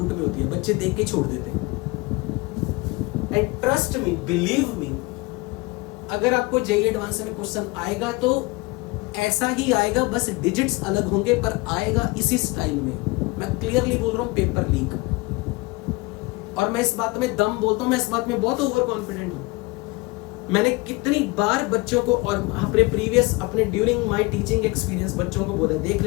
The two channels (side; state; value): right; quieter; 23.8 dB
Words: में होती है, बच्चे देख के छोड़ देते हैं। And trust me, believe me, अगर आपको जेईई एडवांस में क्वेश्चन आएगा तो ऐसा ही आएगा, बस डिजिट्स अलग होंगे, पर आएगा इसी स्टाइल में। मैं क्लियरली बोल रहा हूं, पेपर लीक। और मैं इस बात में दम बोलता हूं, मैं इस बात में बहुत ओवर कॉन्फिडेंट हूं। मैंने कितनी बार बच्चों को और अपने प्रीवियस अपने ड्यूरिंग माय टीचिंग एक्सपीरियंस बच्चों को बोला, देख